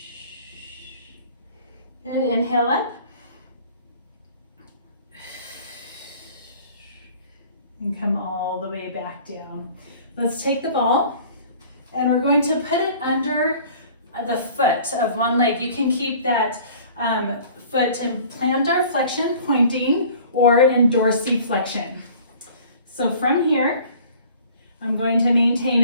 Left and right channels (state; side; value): inverted; both; correlation -0.49